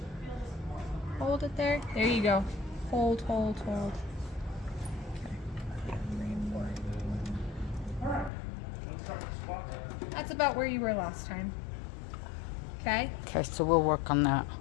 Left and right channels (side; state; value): right; drops out; at 8.3 s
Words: Hold it there. There you go. Hold. Okay. 3 and 4. That's about where you were last time. Okay. Okay, so we'll work on that.